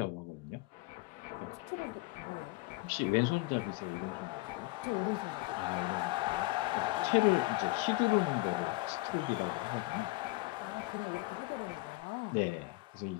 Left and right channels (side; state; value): right; quieter; 21.6 dB